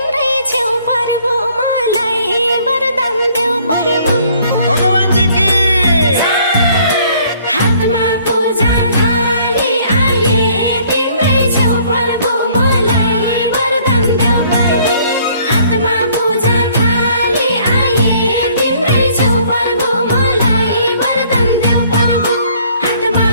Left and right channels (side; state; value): both; inverted; correlation -0.60